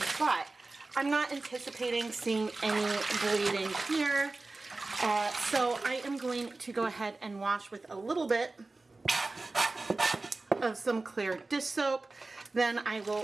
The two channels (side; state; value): left; quieter; 3.3 dB